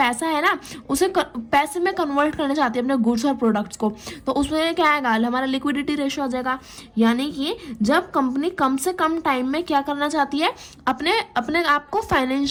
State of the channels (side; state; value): both; identical; correlation 1.00